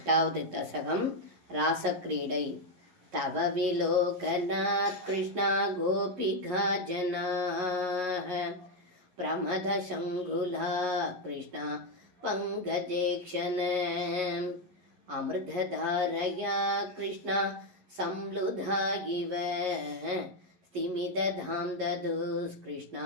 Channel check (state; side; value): late; left; 11 ms